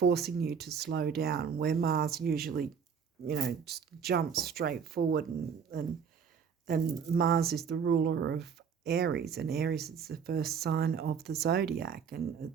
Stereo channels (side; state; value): left; quieter; 6.7 dB